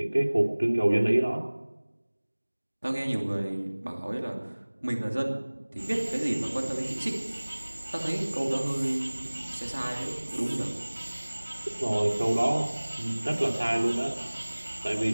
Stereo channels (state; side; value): inverted; both; correlation -1.00